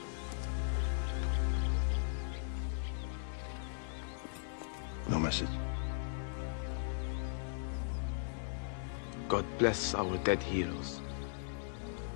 No message. God bless our dead heroes.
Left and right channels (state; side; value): silent; right; digital silence